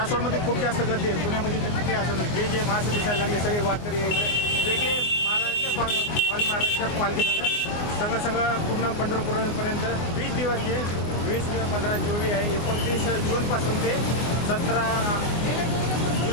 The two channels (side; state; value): right; late; 24 ms